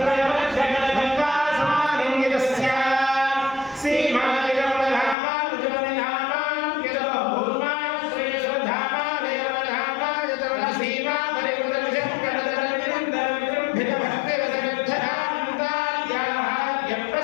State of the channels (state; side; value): drops out; right; at 5.2 s